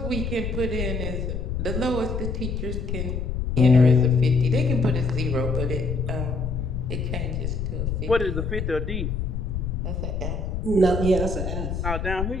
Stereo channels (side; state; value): left; noise; rumble, 3 dB below the sound